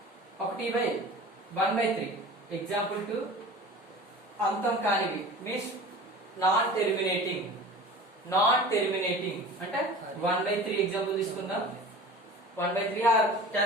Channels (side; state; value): both; normal; correlation 0.39